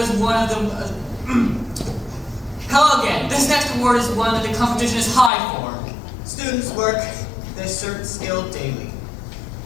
one of the. Hello again. This next award is one that the competition is high for. Students work this certain skill daily,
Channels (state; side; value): drops out; right; at 5.3 s